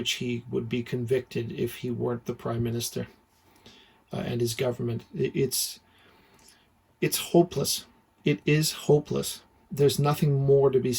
he would be convicted if he weren't the Prime Minister and his government. It's hopeless. It is hopeless. There's nothing more to be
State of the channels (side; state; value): both; identical; correlation 1.00